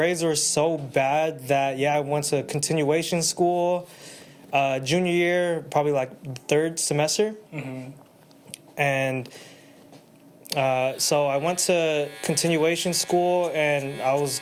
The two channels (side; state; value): both; identical; correlation 1.00